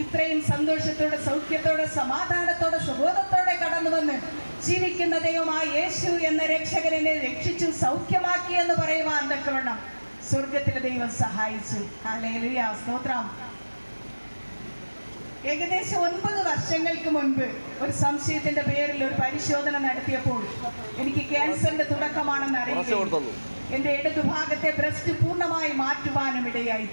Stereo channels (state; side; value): inverted; both; correlation -1.00